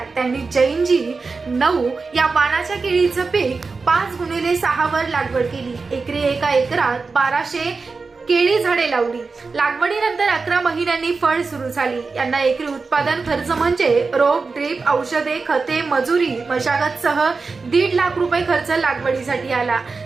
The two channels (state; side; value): quieter; left; 4.3 dB